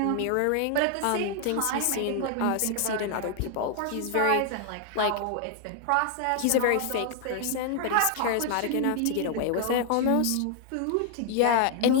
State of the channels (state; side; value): different; both; correlation 0.00